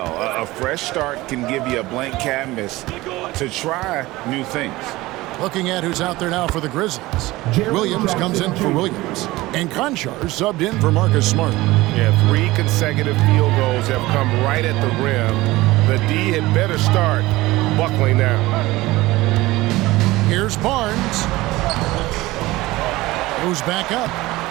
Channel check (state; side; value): quieter; left; 19.2 dB